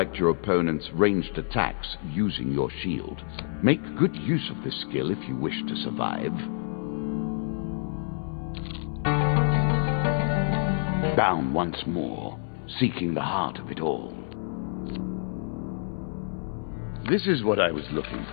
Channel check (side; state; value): right; silent; 60 dB below the other